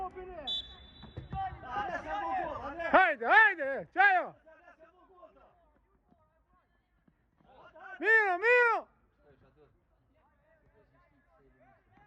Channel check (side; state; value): both; identical; correlation 1.00